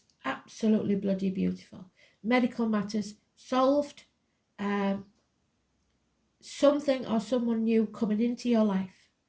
Absolutely bloody beautiful. Medical matters solved. Something or someone new coming into your life.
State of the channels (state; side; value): identical; both; correlation 1.00